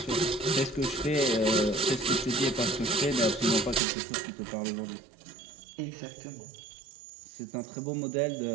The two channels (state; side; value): drops out; left; at 3.8 s